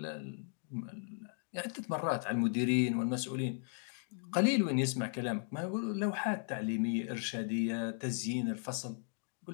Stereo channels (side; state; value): right; silent; 54 dB below the other